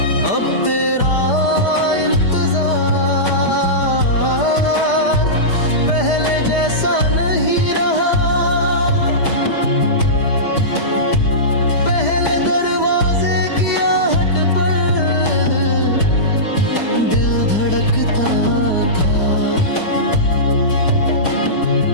अब तेरा इंतजार पहले जैसा नहीं रहा। पहले दरवाजे की आहट पर दिल धड़कता था,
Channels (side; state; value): right; late; 4.9 ms